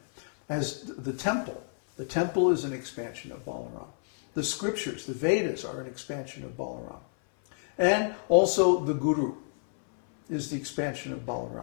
As the temple is an expansion of Balarāma. The scriptures, the Vedas, are an expansion of Balarāma. And also the Guru is the expansion of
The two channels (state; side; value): silent; right; 58 dB below the other